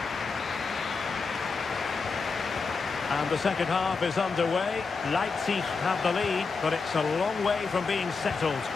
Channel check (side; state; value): right; quieter; 4.7 dB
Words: And the second half is underway. Leipzig have the lead, but it's a long way from being settled.